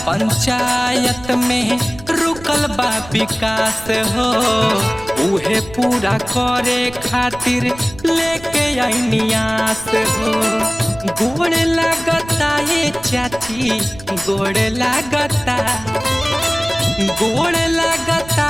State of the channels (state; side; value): noise; right; rumble, 17 dB below the sound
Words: पंचायत में रुकल बा विकास हो, उहे पूरा करे खातिर लेके आईनी आस हो। गोड़ लगता ये चाची, गोड़ लगता, गोड़ लगता